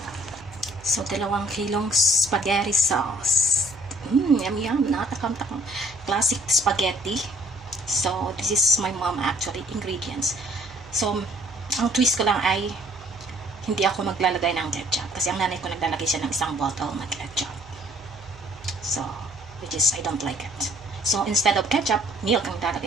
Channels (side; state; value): right; noise; hum, 21 dB below the sound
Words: So, 2 kilong spaghetti sauce. Yum, yum. Nakatakam-takam. Classic spaghetti. So, this is my mom actually ingredients. So, ang twist ko lang ay hindi ako maglalagay ng ketchup kasi ang nanay ko naglalagay siya ng isang bottle na ketchup. So, which is I don't like it. So, instead of ketchup, milk ang